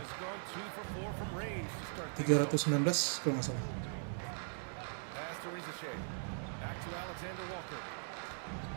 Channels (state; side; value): silent; left; digital silence